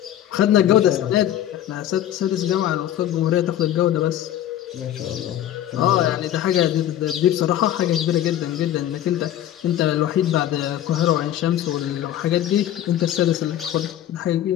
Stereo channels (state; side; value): quieter; right; 11.8 dB